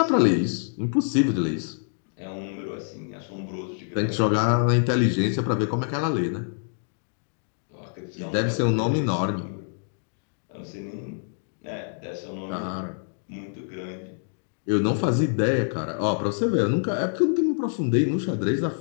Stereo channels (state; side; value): silent; right; digital silence